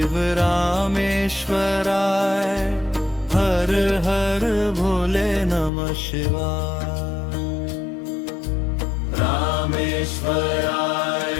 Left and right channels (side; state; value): right; drops out; at 5.7 s